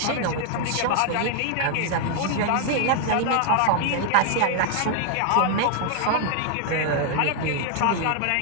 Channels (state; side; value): different; both; correlation 0.00